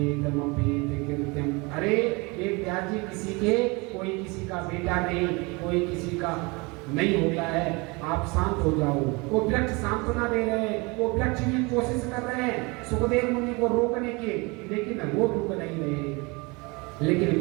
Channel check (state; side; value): quieter; left; 27.1 dB